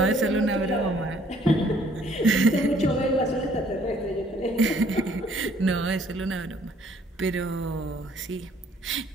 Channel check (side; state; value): both; normal; correlation 0.62